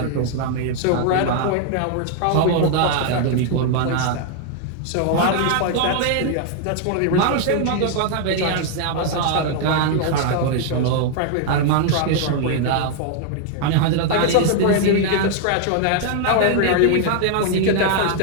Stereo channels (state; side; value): different; both; correlation 0.00